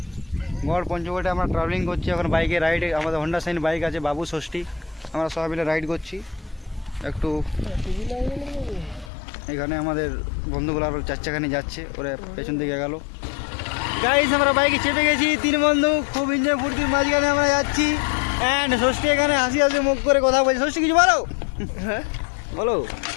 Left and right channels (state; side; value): drops out; right; at 9.1 s